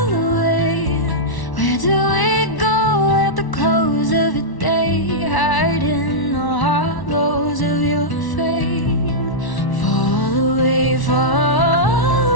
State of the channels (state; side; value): late; right; 1.1 ms